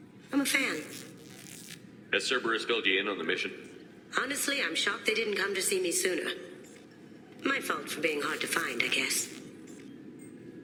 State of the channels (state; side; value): identical; both; correlation 1.00